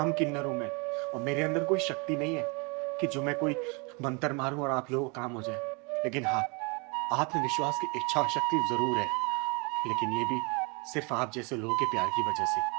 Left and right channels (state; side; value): quieter; left; 31.0 dB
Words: किन्नर हूँ मैं, और मेरे अंदर कोई शक्ति नहीं है कि जो मैं कोई मंत्र मारूं और आप लोगों को काम हो जाए। लेकिन हाँ, आप में विश्वास की इच्छा शक्ति जरूर है, लेकिन ये भी सिर्फ आप जैसे लोगों के प्यार की वजह से,